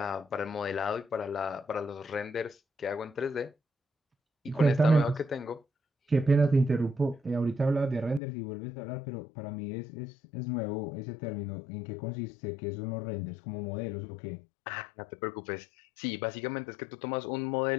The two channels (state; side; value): drops out; right; at 8.2 s